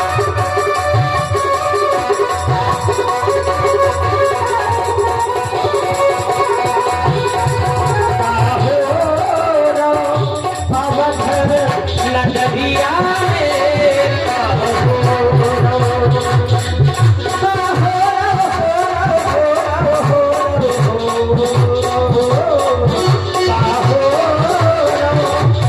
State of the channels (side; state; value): both; identical; correlation 1.00